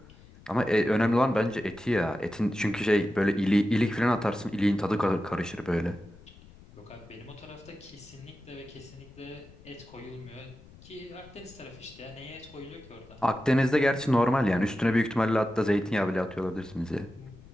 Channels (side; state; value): left; noise; rumble, 22 dB below the sound